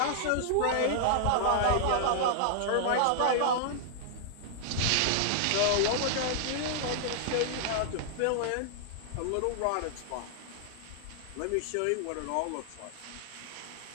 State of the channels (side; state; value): both; different; correlation -0.01